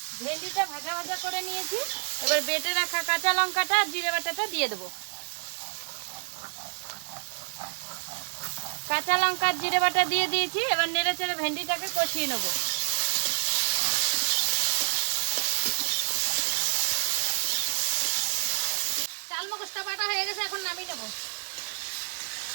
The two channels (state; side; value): silent; left; digital silence